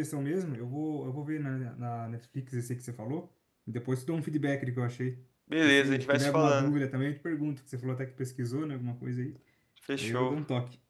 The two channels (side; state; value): both; identical; correlation 1.00